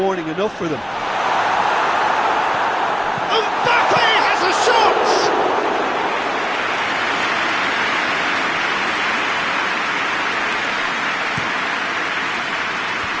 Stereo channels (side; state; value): both; identical; correlation 1.00